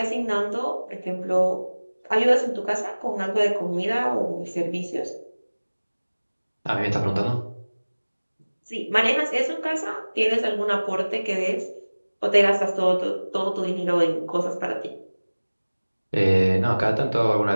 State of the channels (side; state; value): both; inverted; correlation -1.00